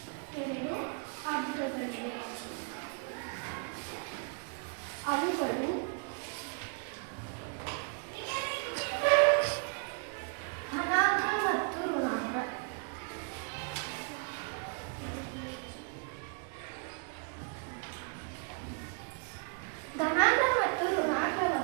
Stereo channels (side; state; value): left; quieter; 38.3 dB